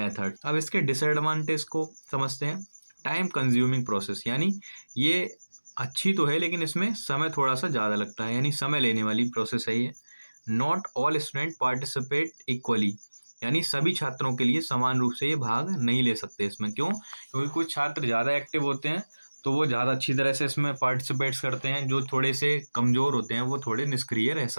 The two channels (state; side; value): inverted; both; correlation -1.00